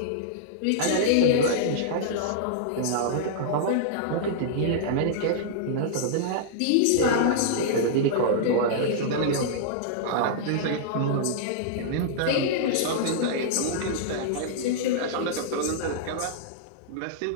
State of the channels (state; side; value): different; both; correlation -0.02